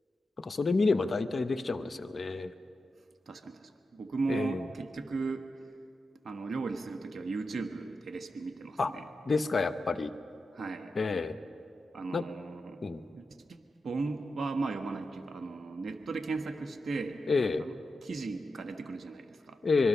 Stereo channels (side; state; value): both; normal; correlation 0.90